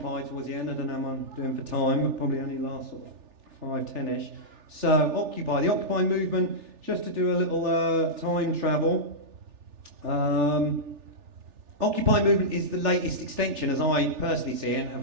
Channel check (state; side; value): late; left; 3.4 ms